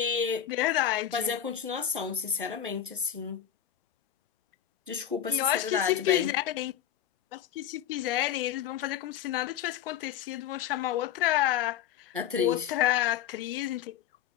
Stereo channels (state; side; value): quieter; right; 10.0 dB